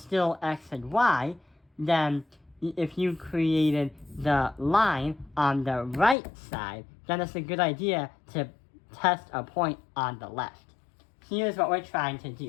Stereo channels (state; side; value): drops out; right; at 6.2 s